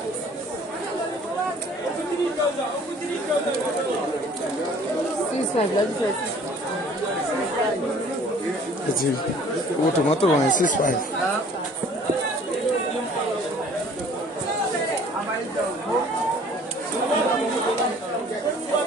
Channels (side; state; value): both; normal; correlation 0.53